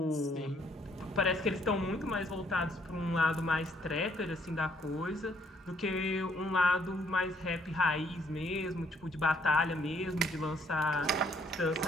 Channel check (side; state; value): both; normal; correlation 0.67